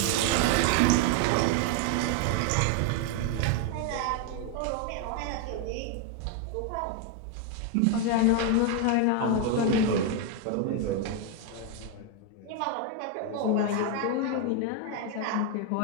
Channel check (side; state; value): both; different; correlation 0.01